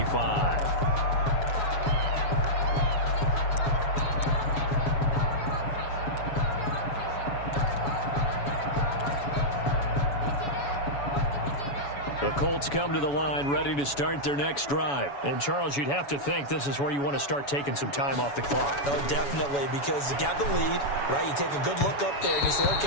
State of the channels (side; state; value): right; late; 7.1 ms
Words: Colts come to the line ready to start their next drive. And, Charles, you'd have to think this is where you want to start taking some time off the clock. Oh, definitely, because you got the lead, right? You take a good look up there and you say,